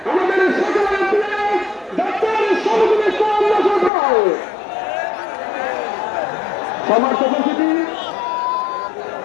আমাদের সকলের প্রিয় ডক্টর শহীদুল ইসলাম মাসুদ ভাই। সমর্থ উপস্থিতি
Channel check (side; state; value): right; drops out; at 3.9 s